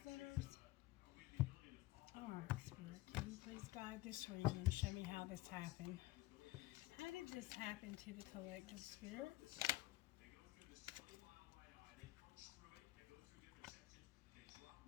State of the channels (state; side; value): quieter; right; 18.4 dB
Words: centers. Alright, Spirit, can you please guide this reading and show me how this happened? How did this happen to the collective, Spirit?